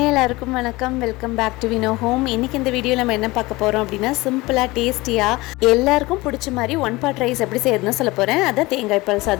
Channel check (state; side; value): quieter; right; 21.2 dB